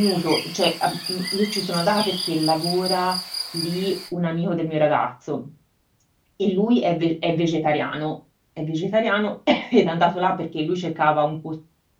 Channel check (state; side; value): identical; both; correlation 1.00